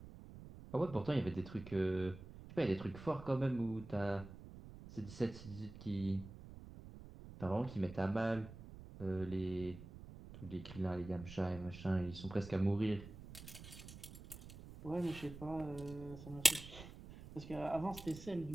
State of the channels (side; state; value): right; noise; rumble, 14 dB below the sound